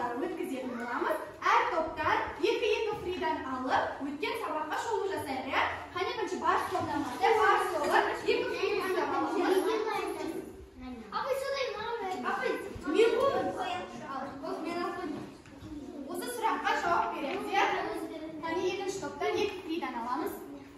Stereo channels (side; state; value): both; identical; correlation 1.00